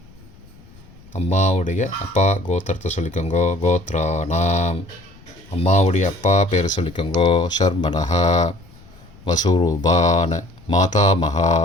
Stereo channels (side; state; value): left; noise; rumble, 24 dB below the sound